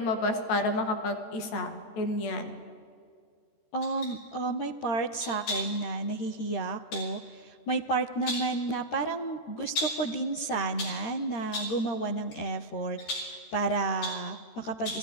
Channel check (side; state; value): right; late; 13 ms